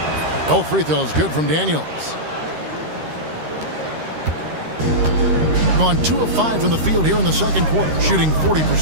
Both free throws good from Daniels. Gone 2 of 5 from the field here in the second quarter, shooting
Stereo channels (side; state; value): left; late; 13 ms